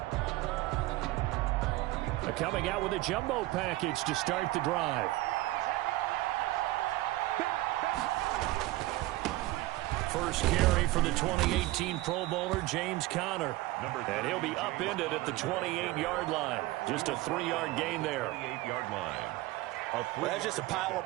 Coming out with a jumbo package to start the drive. First carry for the 2018 Pro Bowler, James Conner. And he'll be upended at the 28-yard line. Just a 3-yard gain there. 28-yard line. Well, that's just a pile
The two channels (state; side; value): quieter; left; 18.3 dB